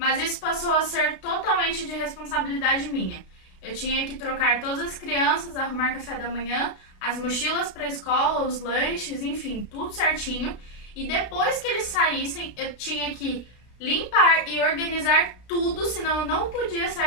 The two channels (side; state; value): right; late; 32 ms